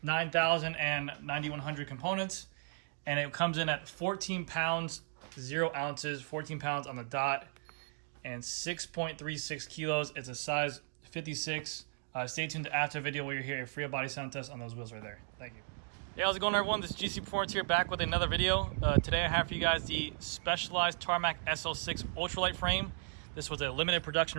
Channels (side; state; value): left; silent; digital silence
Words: 9,000 and 9,100 components. And it comes in at 14 pounds, 0 ounces, 14 pounds on the dot, and 6.36 kilos. It's a size 56. Stay tuned to after video where you hear a free body sound test on those wheels right there. Thank you. Hey, how's it going, everyone? This is GC Performance here, back with another video. Today I have for you guys the Specialized Tarmac Sl6 Ultralight frame. This was a limited